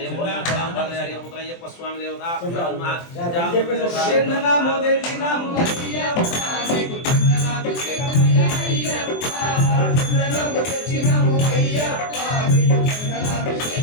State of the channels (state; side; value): late; right; 24 ms